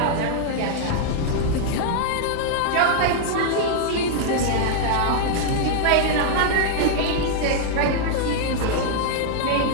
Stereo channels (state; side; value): different; both; correlation -0.01